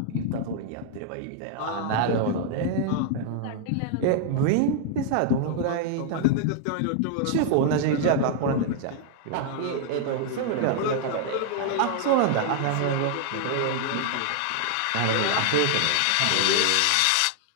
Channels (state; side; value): different; both; correlation 0.00